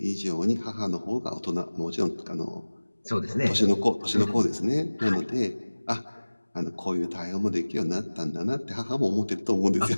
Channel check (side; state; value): both; inverted; correlation -1.00